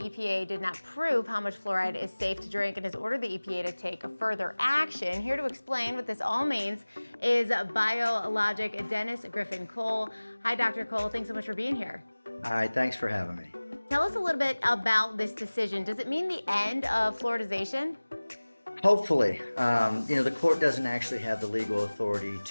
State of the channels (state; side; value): inverted; both; correlation -1.00